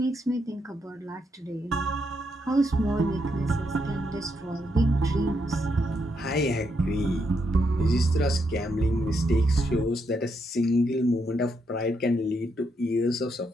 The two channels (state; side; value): normal; both; correlation 0.79